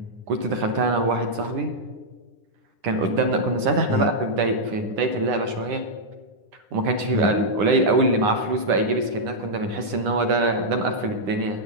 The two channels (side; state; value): left; late; 9.8 ms